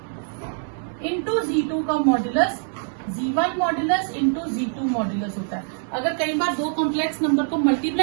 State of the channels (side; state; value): left; silent; 63 dB below the other